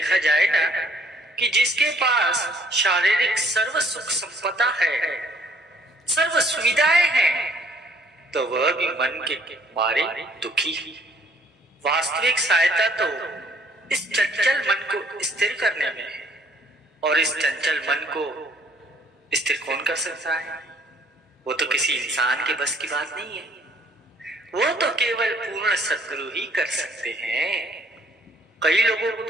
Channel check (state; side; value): normal; both; correlation 0.61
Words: जाए ना, कि जिसके पास शारीरिक सर्व सुख संपदा है, सर्व सुविधाएं हैं, तो वह भी मन के मारे दुखी है। वास्तविक सहायता तो इस चंचल मन को स्थिर करने में है, और इस चंचल मन को स्थिर कौन कर सकता है? वो तो किसी इंसान के बस की बात नहीं है, वो तो केवल पूर्ण सद्गुरु ही कर सकते हैं। कई लोगों को